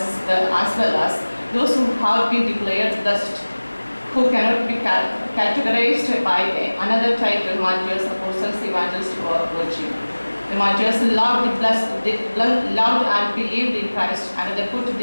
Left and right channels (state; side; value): inverted; both; correlation -1.00